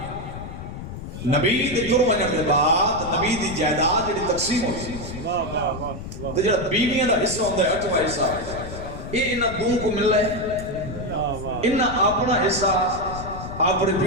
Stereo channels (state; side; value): noise; left; rumble, 10 dB below the sound